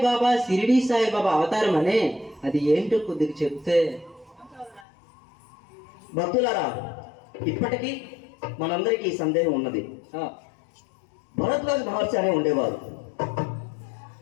బాబా షిరిడి సాయి బాబా అవతారం అనే, అది ఏంటో కొద్దిగా చెప్తే. భక్తులారా, ఇప్పటికీ మనందరికీ ఈ సందేహం ఉన్నది. భరద్వాజ మహర్షి అనే ఉండేవారు.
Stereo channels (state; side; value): drops out; right; at 4.9 s